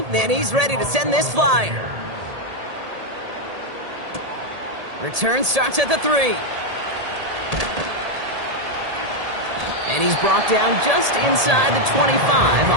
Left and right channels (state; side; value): late; left; 1.8 ms